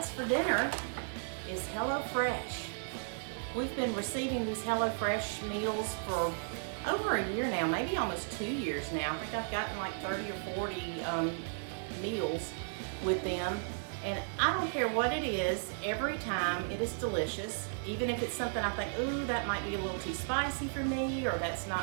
for dinner is HELLOFRESH. We've been receiving these HELLOFRESH meals for over a year now, maybe almost 2 years now. I think I've gotten like 30 or 40 meals with them. And I don't care what it is, every time it is delicious. Even if it's something I think, ooh, that might be a little too spicy for me, or that's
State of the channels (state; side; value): silent; left; 55 dB below the other